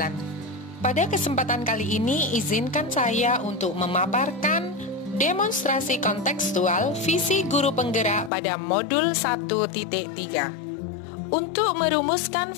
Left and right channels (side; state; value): right; drops out; at 8.3 s